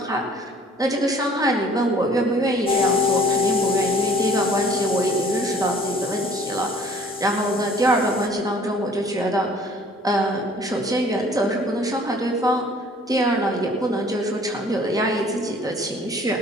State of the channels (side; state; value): both; normal; correlation 0.53